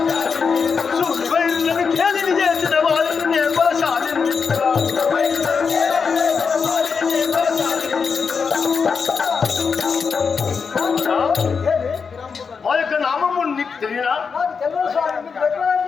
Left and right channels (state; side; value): quieter; right; 5.6 dB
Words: మా యొక్క నామము నీకు తెలియనా?